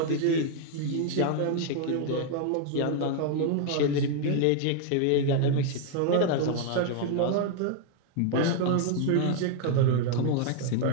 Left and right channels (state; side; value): different; both; correlation 0.00